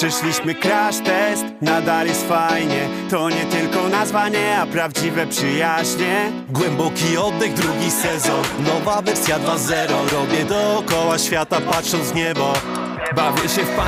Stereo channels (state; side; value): identical; both; correlation 1.00